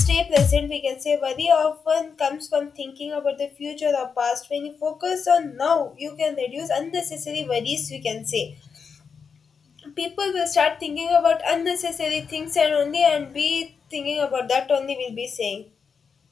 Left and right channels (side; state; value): right; quieter; 5.9 dB